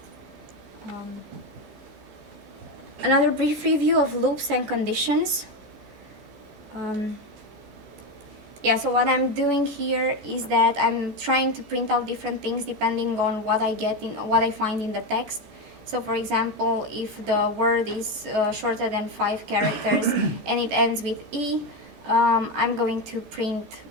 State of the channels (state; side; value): late; left; 14 ms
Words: Another brief review of loops and conditions. Yeah, so what I'm doing here is that I'm trying to print out different things depending on what I find in the text. So for example, if the word is shorter than 5 characters and it ends with E, I'm going to print